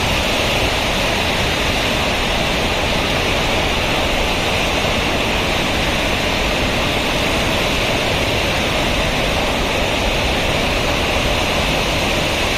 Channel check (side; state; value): both; identical; correlation 1.00